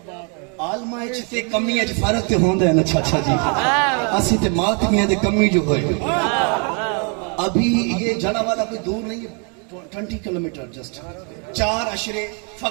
आलमा ते कमी च फर्क तो होंदा है ना चाचा जी। असी ते मातमियां दे कमी जो होए। अभी ये जड़ा वाला कोई दूर नहीं है, 20 किलोमीटर जस्ट। 4 अशरे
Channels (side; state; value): left; quieter; 36.8 dB